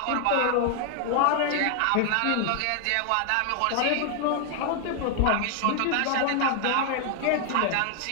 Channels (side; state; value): both; different; correlation 0.00